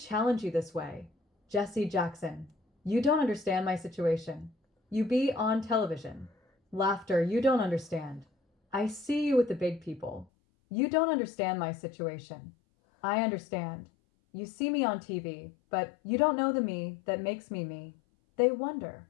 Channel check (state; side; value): drops out; right; at 10.2 s